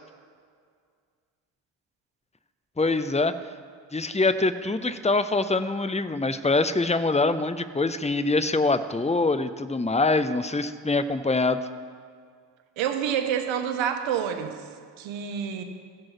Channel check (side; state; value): both; normal; correlation 0.43